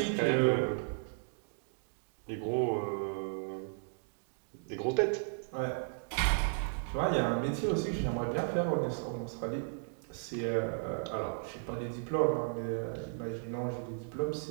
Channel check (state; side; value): silent; left; digital silence